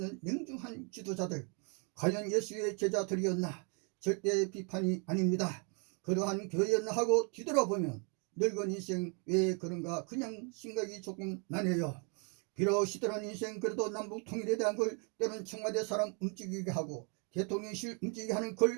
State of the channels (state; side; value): quieter; left; 36.5 dB